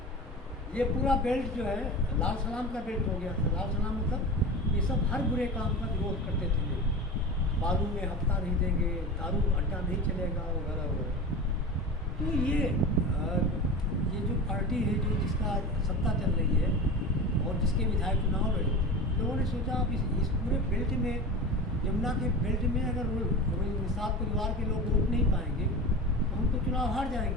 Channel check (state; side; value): normal; both; correlation 0.31